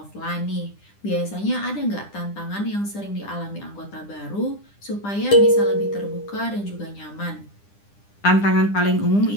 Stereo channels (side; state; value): right; late; 9.9 ms